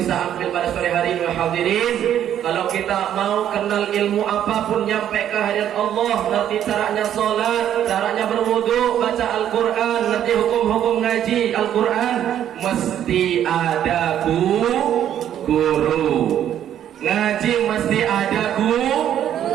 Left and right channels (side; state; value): left; quieter; 10.5 dB